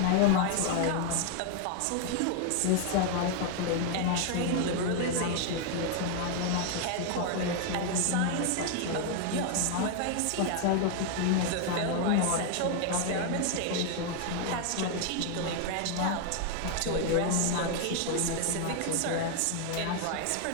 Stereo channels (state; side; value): different; both; correlation 0.00